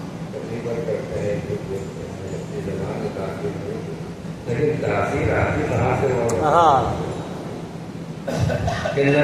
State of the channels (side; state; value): both; identical; correlation 1.00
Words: تقریباً کرتے ہیں اپنی زبان میں تاثیر نہیں لیکن تاثیر آتی کہاں سے کہ